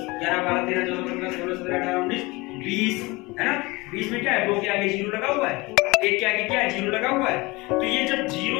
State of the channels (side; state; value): right; quieter; 23.4 dB